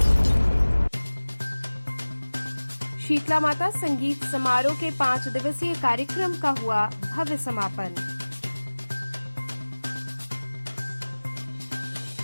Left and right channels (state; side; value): inverted; both; correlation -1.00